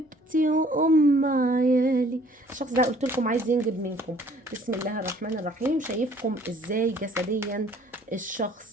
وام عيالي. الشخص ده قلت لكم عايز ينجب منكم. بسم الله الرحمن الرحيم. شايفكم ازاي جسديا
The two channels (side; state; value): both; normal; correlation 0.57